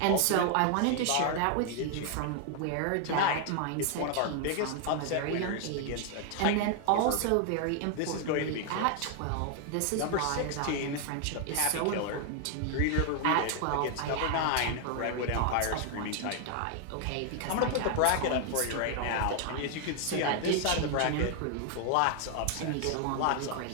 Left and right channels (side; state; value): both; different; correlation 0.00